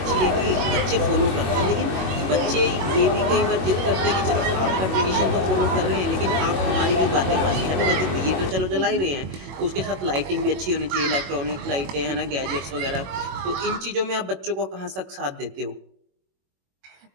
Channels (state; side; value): late; left; 21 ms